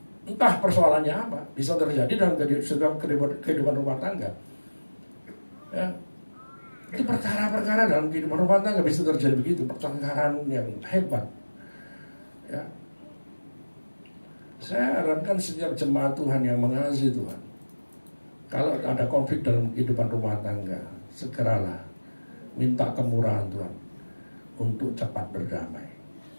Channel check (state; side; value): inverted; both; correlation -1.00